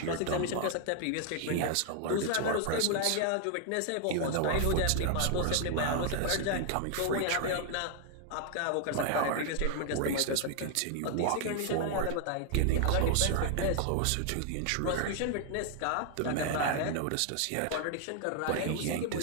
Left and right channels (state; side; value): different; both; correlation 0.00